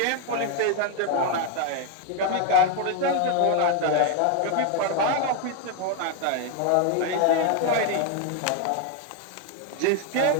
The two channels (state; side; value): different; both; correlation 0.01